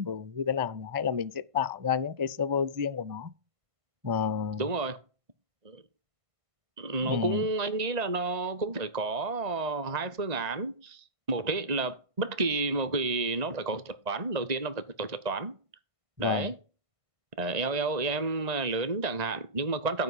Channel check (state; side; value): late; left; 1.5 ms